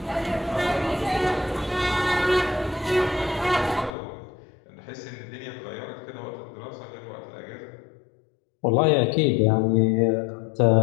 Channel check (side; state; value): right; drops out; at 3.9 s